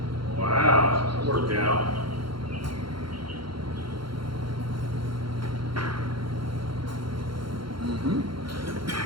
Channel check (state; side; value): late; left; 0.73 ms